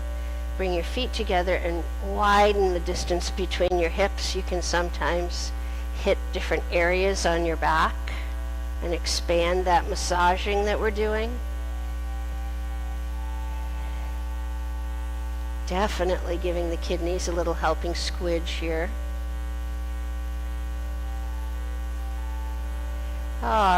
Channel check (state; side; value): identical; both; correlation 1.00